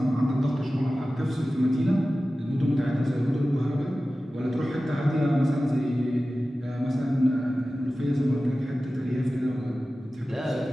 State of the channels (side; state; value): both; normal; correlation 0.95